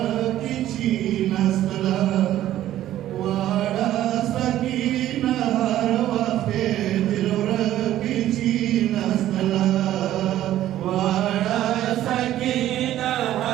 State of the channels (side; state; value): left; quieter; 13.1 dB